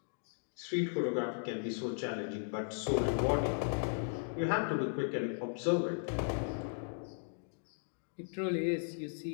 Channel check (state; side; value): silent; right; digital silence